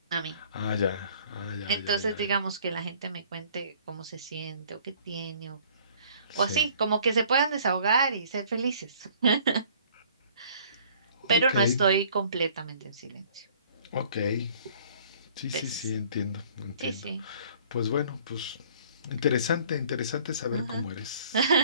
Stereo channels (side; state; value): both; inverted; correlation -0.55